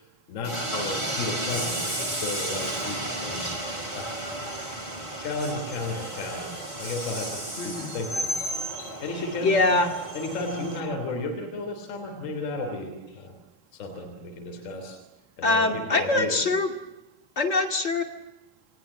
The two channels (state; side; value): late; right; 3.7 ms